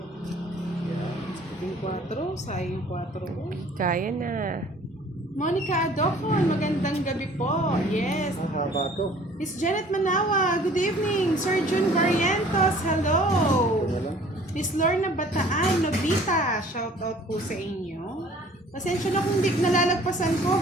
Yan. Yung 4, sayang 4. Kaya na. Monica Adocon, magandang gabi po. Yes. Ah, haba to. Miss Janet Manawa, good evening. Sir Jun Barrientos, hello. Ito na lang. Miss Lorna Bataan, Nobita, shout out po sa inyo. Pasensya na kung di nalalagpasan ko,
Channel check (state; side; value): normal; both; correlation 0.52